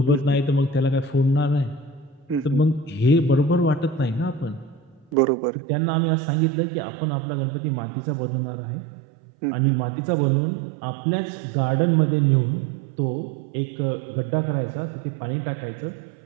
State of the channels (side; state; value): left; drops out; at 5.2 s